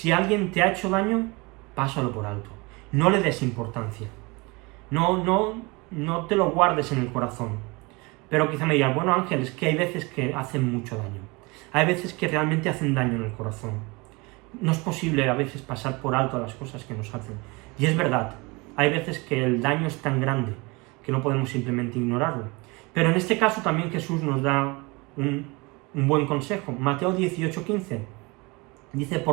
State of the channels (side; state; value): left; quieter; 26.2 dB